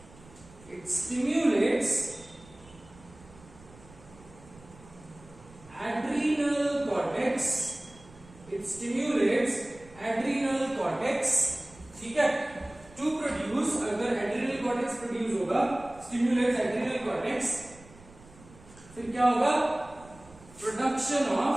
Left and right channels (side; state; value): right; noise; rumble, 23 dB below the sound